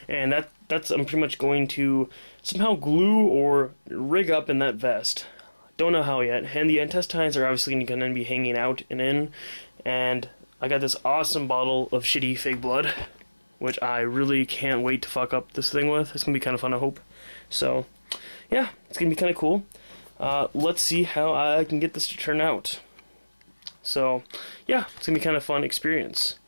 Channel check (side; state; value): both; inverted; correlation -1.00